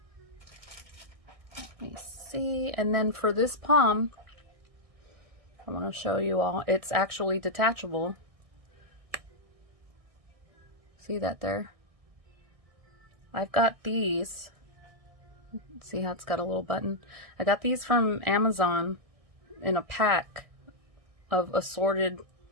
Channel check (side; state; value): left; late; 1.6 ms